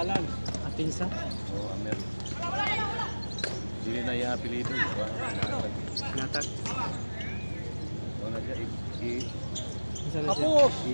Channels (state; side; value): inverted; both; correlation -1.00